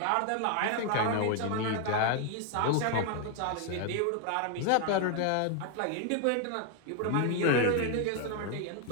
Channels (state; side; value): different; both; correlation 0.00